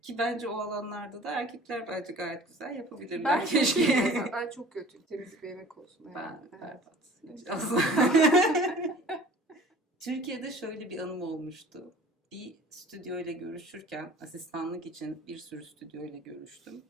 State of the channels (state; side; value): normal; both; correlation 0.46